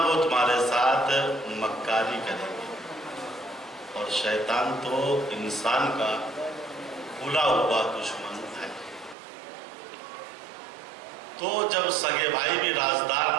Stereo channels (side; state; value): left; drops out; at 9.2 s